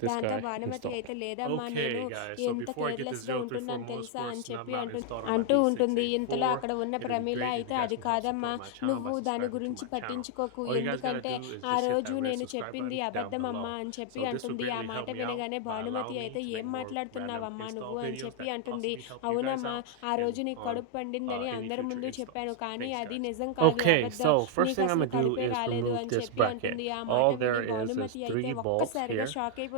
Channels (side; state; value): both; different; correlation 0.00